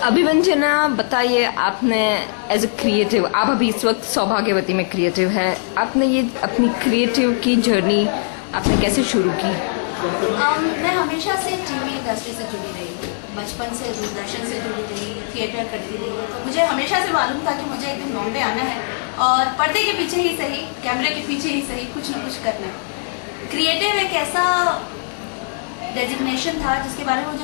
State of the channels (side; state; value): right; silent; digital silence